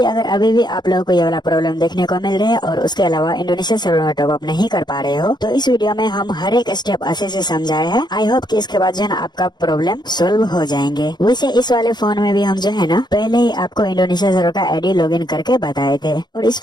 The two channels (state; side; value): late; right; 0.21 ms